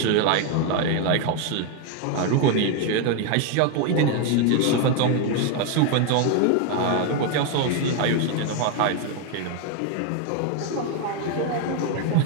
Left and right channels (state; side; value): different; both; correlation 0.01